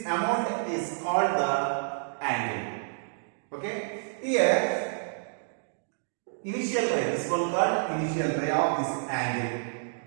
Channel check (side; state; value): left; silent; digital silence